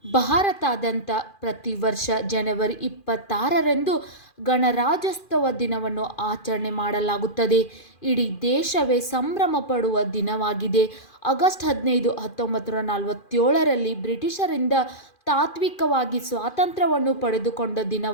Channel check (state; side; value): late; right; 2.4 ms